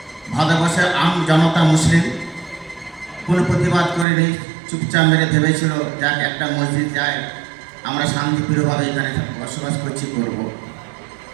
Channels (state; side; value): drops out; left; at 4.0 s